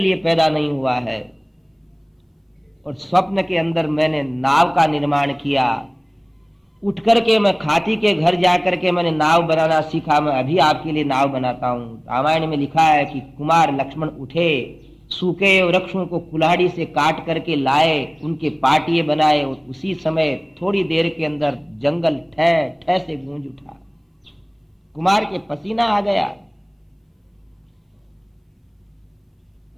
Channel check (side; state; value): both; identical; correlation 1.00